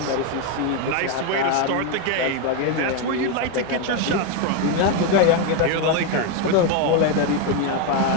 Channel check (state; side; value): different; both; correlation 0.02